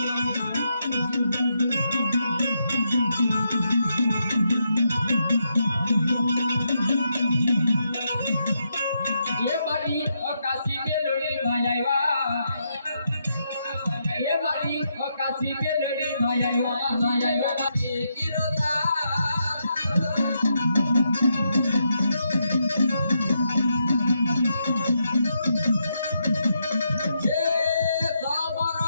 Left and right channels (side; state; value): both; inverted; correlation -0.81